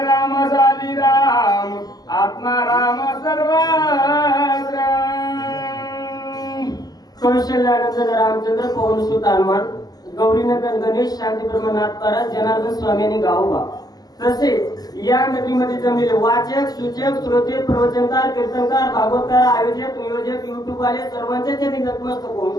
राम झाली राम, आत्मा राम सर्वत्र। कौशल्यानंद रामचंद्र पवन सुत हनुमान, गौरीनंदन गणेश, शांती ब्रह्मनाथ पारा, जनार्दन स्वामी गावोबा, तसेच या नगरीमध्ये जमलेले वाचक, सूचक, श्रोते, प्रवचनकार, कीर्तनकार, भागवतकार, आयोजक, नियोजक, युट्यूब वाले सर्वांच्या चरणी नतमस्तक होऊन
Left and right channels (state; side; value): late; right; 0.19 ms